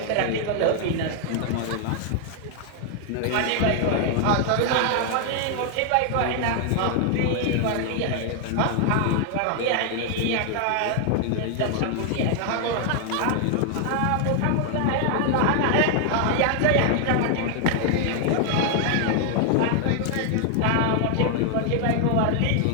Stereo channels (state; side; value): different; both; correlation 0.00